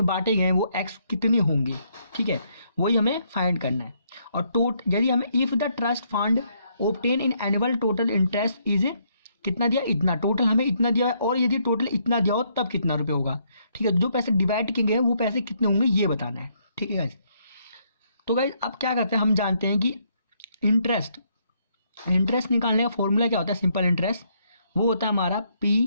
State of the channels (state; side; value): inverted; both; correlation -0.72